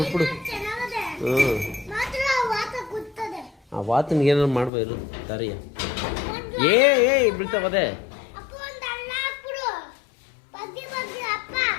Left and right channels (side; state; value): right; drops out; at 4.7 s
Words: ಬಿಟ್ಬಿಡು. ಆ ವಾತನಿಗೆ ಏನಾರು ಮಾಡ್ಬೋದು ತಾರಿಯ. ಏ ಬೀಳ್ತಾವದೆ.